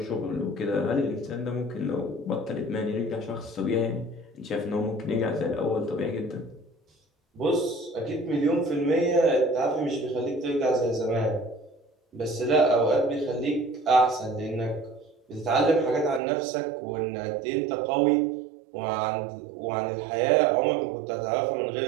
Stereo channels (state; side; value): drops out; left; at 16.2 s